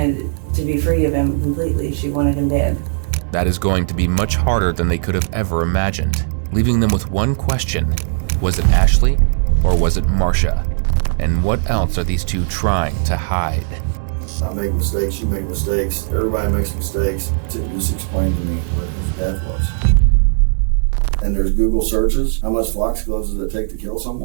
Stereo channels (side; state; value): left; silent; digital silence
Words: to be free of him completely. She wanted him dead. That is going to be much harder than they could have ever imagined, leaving them with one question. Was it Ashley or was it Marcia? And what else are these two trying to hide? I make mistakes, you make mistakes, everybody makes mistakes. Just explain to me what his death was. And there's Google searches. How much foxglove does it take to kill